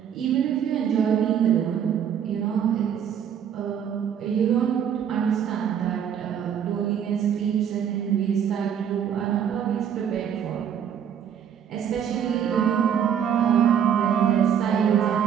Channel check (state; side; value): quieter; left; 8.5 dB